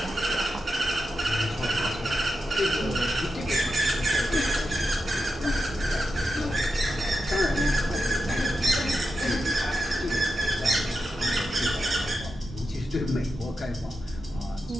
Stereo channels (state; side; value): normal; both; correlation 0.88